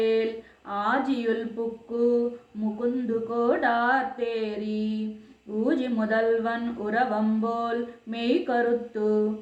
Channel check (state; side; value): identical; both; correlation 1.00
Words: ఆజియుల్ పుక్కు ముకుందు కోడార్తేరి ఊజి முதல்வன் உறவம்போல் மெய் கருத்து